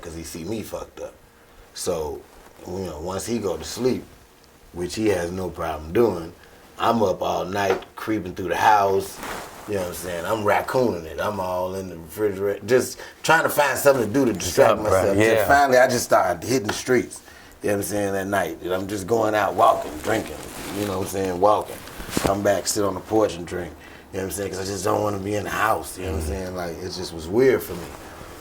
because he see me fucked up. So, once he go to sleep, which he has no problem doing, I'm up all night creeping through the house. You know what I'm saying? I'm raccooning it. I'm all in the refrigerator, just trying to find something to do to distract myself. Yeah. Till finally, I just started hitting the streets. You know what I'm saying? At night, and I'm just going out walking, drinking. You know what I'm saying? Walking. Come back, sit on the porch and drink. You know what I'm saying? Because I just don't want to be in the house. You know what I'm saying? Like, it just was weird for me.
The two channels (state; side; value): identical; both; correlation 1.00